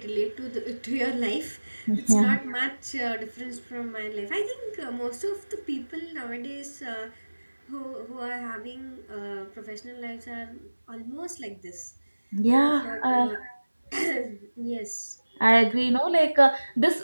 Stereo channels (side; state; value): both; inverted; correlation -1.00